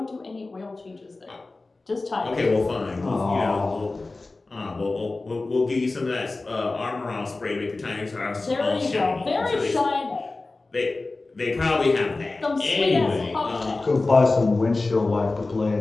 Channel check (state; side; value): quieter; right; 3.3 dB